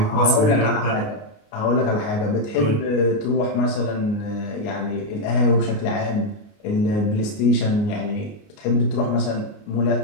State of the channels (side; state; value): right; late; 28 ms